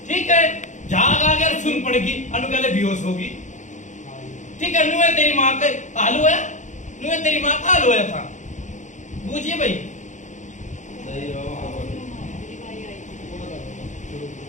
ठीक है। झाग आ गया सुन पड़ेगी, अनु कहले बेहोश होगी ठीक है। नुए तेरी माँ का हाल हुआ, नुए तेरी माँ का हाल हुआ था बूझिए भाई।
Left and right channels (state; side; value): late; right; 0.35 ms